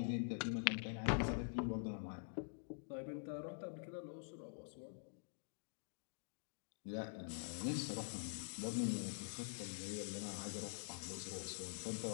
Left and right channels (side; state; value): right; silent; digital silence